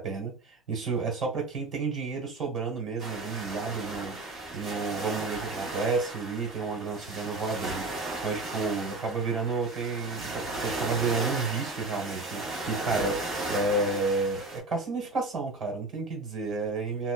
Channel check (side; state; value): left; quieter; 3.2 dB